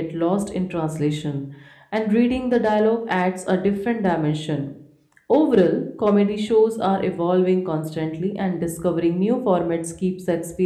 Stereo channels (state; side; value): identical; both; correlation 1.00